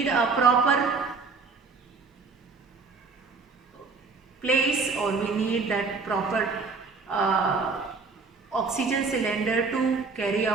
a proper place, or we need that proper oxygen cylinder to carry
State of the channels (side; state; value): left; quieter; 4.5 dB